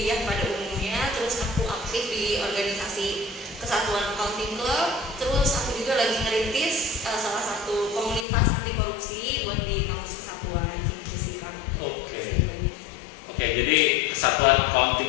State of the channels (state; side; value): drops out; right; at 8.2 s